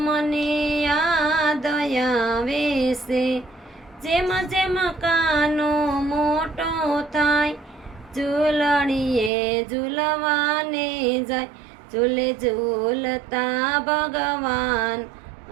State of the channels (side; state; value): left; drops out; at 9.3 s